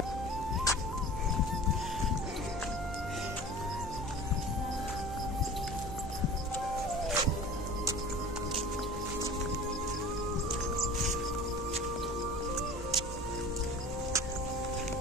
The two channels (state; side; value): noise; right; hum, 10 dB below the sound